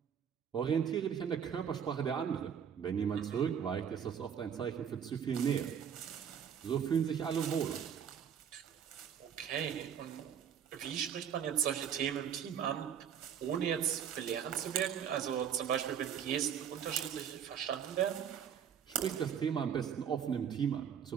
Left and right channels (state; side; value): quieter; left; 8.3 dB